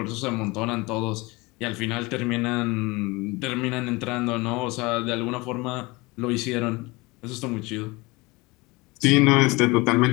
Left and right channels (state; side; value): quieter; right; 24.0 dB